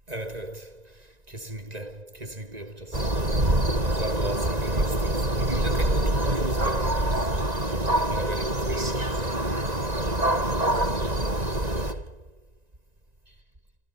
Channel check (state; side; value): late; left; 1.9 ms